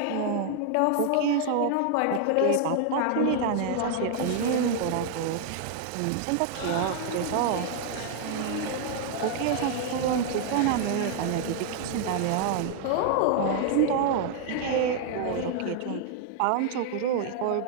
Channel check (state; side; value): different; both; correlation 0.00